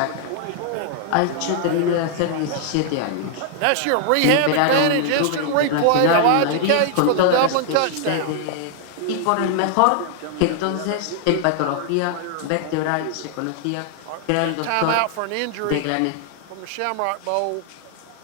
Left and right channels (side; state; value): both; different; correlation 0.00